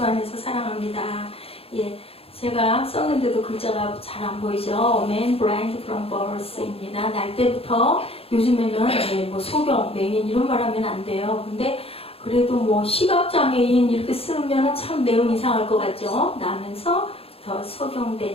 안에서 사랑합니다. 예. 제가 썼는데도 글자가 잘 안 보이죠? Man blind from birth입니다. 날 때부터 요즘에는 뭐 소경, 맹인 이런 말 하면 안 돼요. 근데 그래도 뭐 시각장애인 이렇게 쓰면 참 내용 이상할 것 같죠? 나면서 더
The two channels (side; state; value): right; late; 0.28 ms